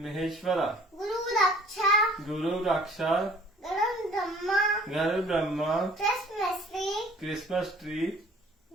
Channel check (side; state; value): both; normal; correlation 0.52